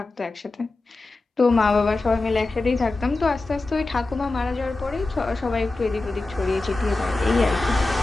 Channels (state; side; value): quieter; right; 3.2 dB